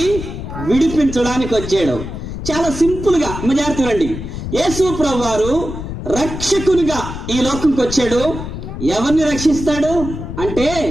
విడిపించడానికి వచ్చాడు. చాలా సింపుల్ గా జాగ్రత్త రండి. యేసు ప్రభువారు రక్షకునిగా ఈ లోకంకి వచ్చాడు. ఎవరిని రక్షిస్తాడు అంటే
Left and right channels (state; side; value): noise; left; rumble, 8 dB below the sound